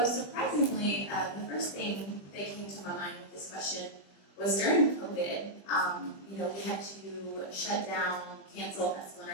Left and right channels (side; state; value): right; late; 20 ms